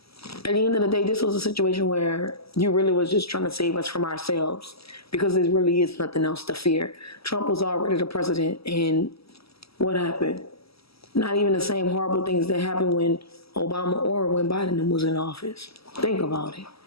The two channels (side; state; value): right; late; 0.76 ms